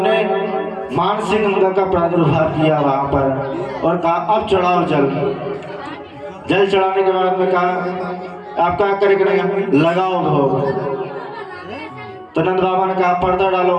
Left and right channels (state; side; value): identical; both; correlation 1.00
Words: ने मानसिंह गंगा का प्रादुर्भाव किया वहां पर और कहा अब चढ़ाओ जल। जल चढ़ाने के बाद में कहा आप क्या करेंगे? लगाओ भोग। तो नंद बाबा ने कहा पर्दा डालो।